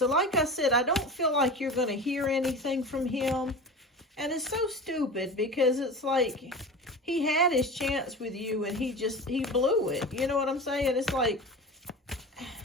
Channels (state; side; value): normal; both; correlation 0.32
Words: like I said, I don't feel like you're going to hear anything from him. And it's so stupid because it's like he had his chance with you and he blew it. You know what I'm saying? It's like